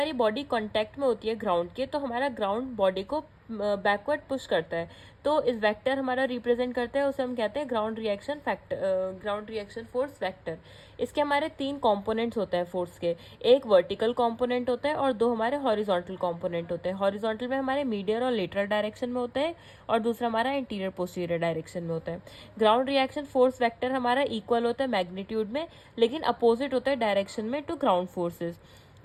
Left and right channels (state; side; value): identical; both; correlation 1.00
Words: बॉडी कांटेक्ट में होती है ग्राउंड के, तो हमारा ग्राउंड बॉडी को बैकवर्ड पुश करता है, तो इस वेक्टर हमारा रिप्रेजेंट करता है, उसे हम कहते हैं ground reaction factor, ground reaction force vector. इसके हमारे 3 कंपोनेंट्स होते हैं फोर्स के। एक वर्टिकल कंपोनेंट होता है और 2 हमारे हॉरिजॉन्टल कंपोनेंट होते हैं। हॉरिजॉन्टल में हमारे मीडियल और लेटरल डायरेक्शन में होता है, और दूसरा हमारा इंटीरियर पोस्टीरियर डायरेक्शन में होता है। ग्राउंड रिएक्शन फोर्स वेक्टर हमारा इक्वल होता है मैग्नीट्यूड में, लेकिन अपोजिट होता है डायरेक्शन में to ground forces